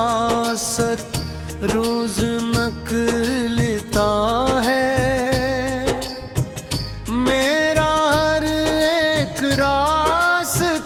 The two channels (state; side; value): identical; both; correlation 1.00